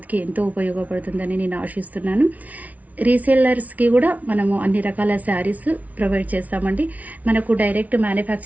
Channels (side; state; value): left; late; 0.071 ms